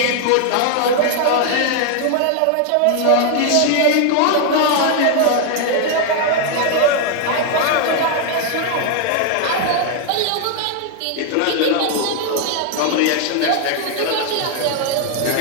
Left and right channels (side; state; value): both; different; correlation 0.00